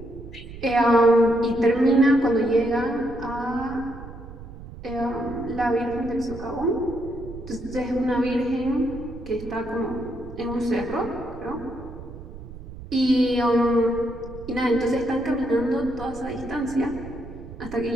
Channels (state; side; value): noise; right; rumble, 14 dB below the sound